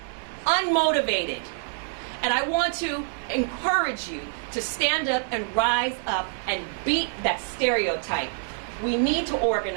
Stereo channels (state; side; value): silent; left; 61 dB below the other